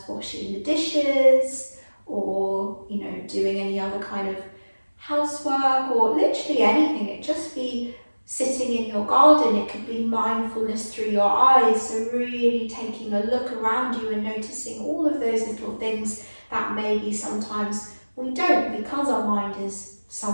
washing the dishes, or doing any other kind of housework, or literally anything. It just be sitting in your garden, it could be mindfulness through your eyes, so really taking a look around you and noticing all of those little things that maybe sometimes we don't because our mind is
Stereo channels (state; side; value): inverted; both; correlation -1.00